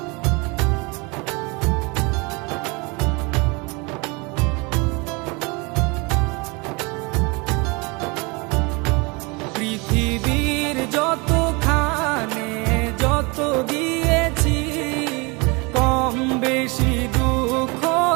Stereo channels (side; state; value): left; quieter; 28.1 dB